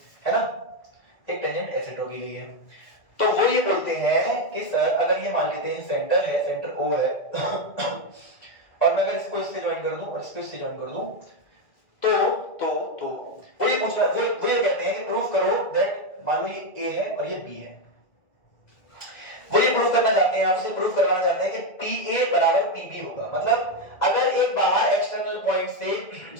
ना, एक टेंजेंट ऐसे ड्रॉ की गई है, तो वो ये बोलते हैं कि सर अगर ये मान लेते हैं सेंटर है, सेंटर O है और मैं अगर इसको इससे ज्वाइन कर दूं और इसको इससे ज्वाइन कर दूं तो वो ये पूछ रहा है, वो ये कहते हैं कि प्रूफ करो दैट, मान लो ये A है और ये B है. वो ये प्रूफ करना चाहते हैं, आपसे प्रूफ करवाना चाहते हैं कि PA बराबर PB होगा. मतलब अगर एक बाहर एक्सटर्नल पॉइंट से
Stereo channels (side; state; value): right; late; 1.9 ms